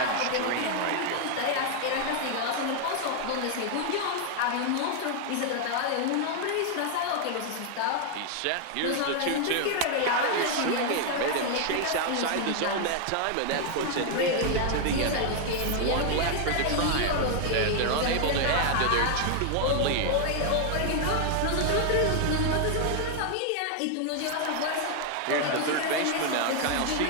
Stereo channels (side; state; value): both; different; correlation 0.00